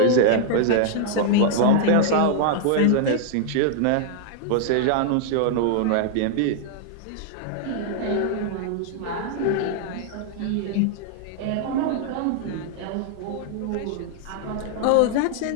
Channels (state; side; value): different; both; correlation 0.00